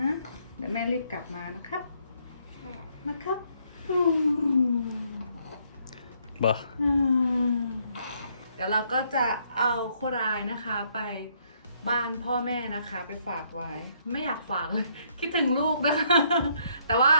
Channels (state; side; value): inverted; both; correlation -0.70